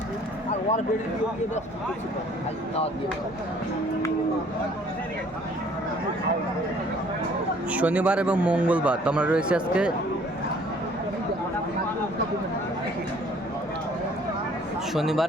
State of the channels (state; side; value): normal; both; correlation 0.57